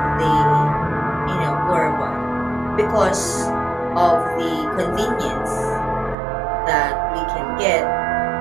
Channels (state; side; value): drops out; left; at 6.2 s